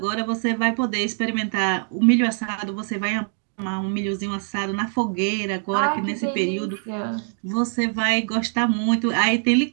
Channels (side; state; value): left; silent; 61 dB below the other